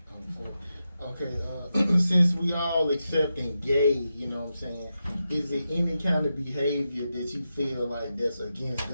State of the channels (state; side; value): inverted; both; correlation -0.89